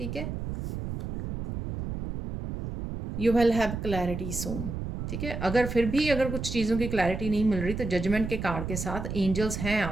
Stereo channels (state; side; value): noise; right; rumble, 6 dB below the sound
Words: है। यू विल हैव क्लैरिटी सून, ठीक है। अगर फिर भी अगर कुछ चीज़ों की क्लैरिटी नहीं मिल रही, तो जजमेंट के कार्ड के साथ एंजल्स हैं